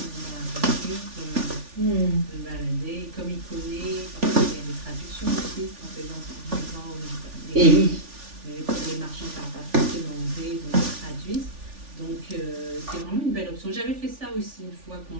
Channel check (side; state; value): left; late; 3.4 ms